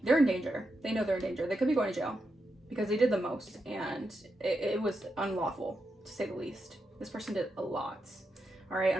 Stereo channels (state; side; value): normal; both; correlation 0.86